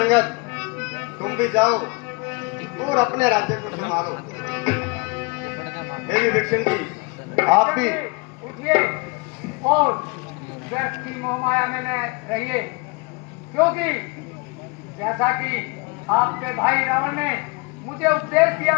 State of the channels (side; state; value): right; quieter; 29.0 dB